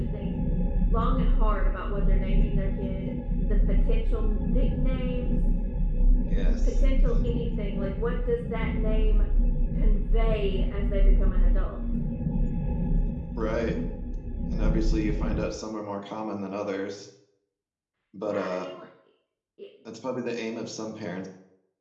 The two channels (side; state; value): both; identical; correlation 1.00